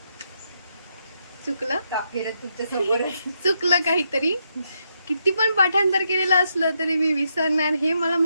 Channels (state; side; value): inverted; both; correlation -0.79